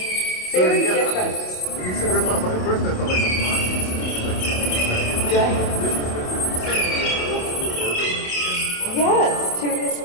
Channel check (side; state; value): right; late; 27 ms